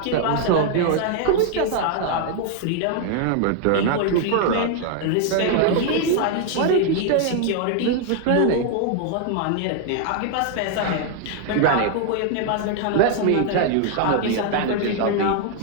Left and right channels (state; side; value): different; both; correlation 0.00